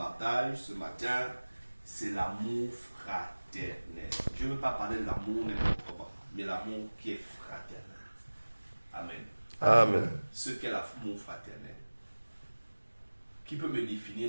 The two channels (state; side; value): inverted; both; correlation -1.00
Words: ce matin, c'est l'amour fraternel. Je ne veux pas parler de l'amour n'importe comment, mais l'amour qui est fraternel. Amen. Amen. Ce qu'est l'amour fraternel. Qui peut me